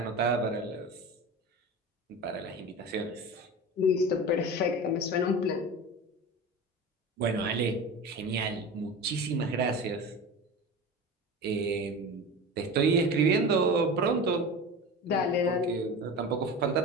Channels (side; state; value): both; normal; correlation 0.31